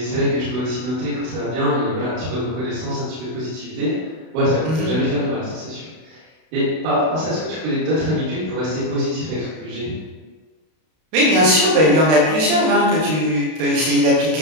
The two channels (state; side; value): late; left; 32 ms